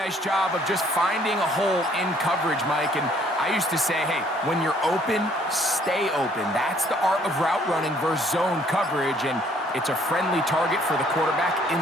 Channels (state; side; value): normal; both; correlation 0.62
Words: job of just finding a hole in coverage, Mike. And I used to say, hey, when you're open, stay open. That's the art of route running versus zone coverage. And it's a friendly target for the quarterback